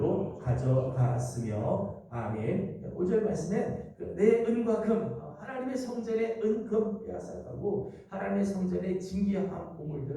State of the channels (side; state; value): both; identical; correlation 1.00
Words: 가져갔으며 아멘. 5절 말씀에 내 은과 금, 하나님의 성전의 은, 금 빼앗아가고 하나님의 성전의 진귀한